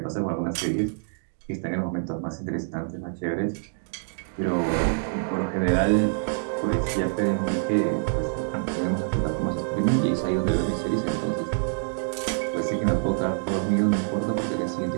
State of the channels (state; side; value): silent; left; digital silence